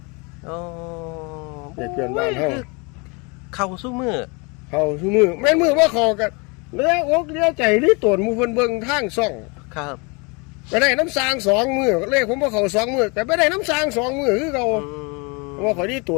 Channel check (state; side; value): quieter; right; 30.3 dB